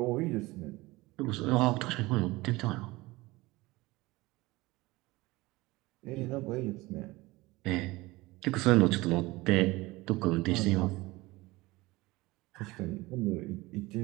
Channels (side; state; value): left; quieter; 20.9 dB